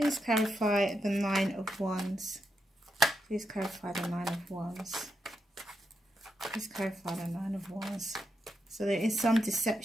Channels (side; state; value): both; normal; correlation 0.84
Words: clarify the 9 of Wands. Please clarify the 9 of Wands. Please clarify the 9 of Wands. So there is some